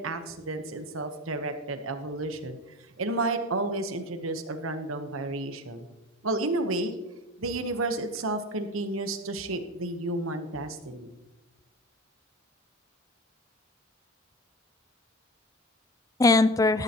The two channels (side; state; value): both; normal; correlation 0.30